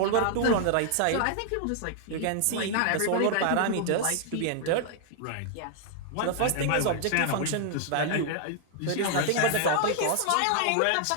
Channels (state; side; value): different; both; correlation 0.00